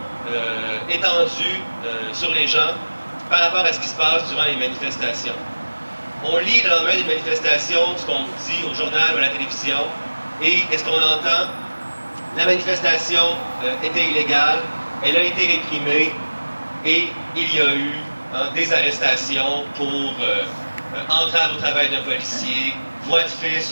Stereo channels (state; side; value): inverted; both; correlation -1.00